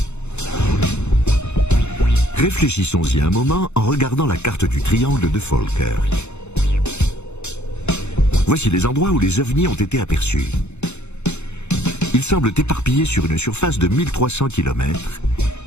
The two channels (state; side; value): late; right; 0.82 ms